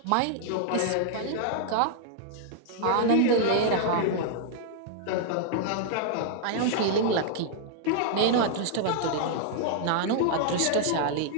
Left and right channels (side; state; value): both; different; correlation -0.01